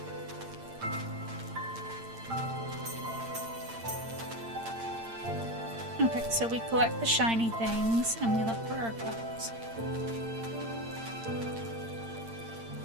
Okay, so we collect the shiny things and we look for our cubs.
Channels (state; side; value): late; left; 8.8 ms